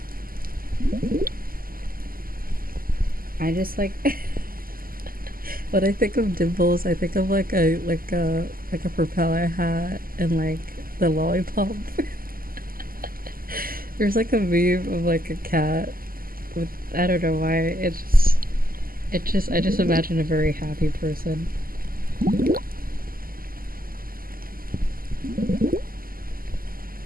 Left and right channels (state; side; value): late; left; 0.42 ms